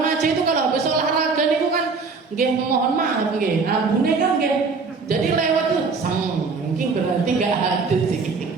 itu kalau habis olahraga itu kan mohon maaf ambune kan jadi lewat tuh mungkin berarti nggak hadus sih.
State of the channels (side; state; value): left; quieter; 4.6 dB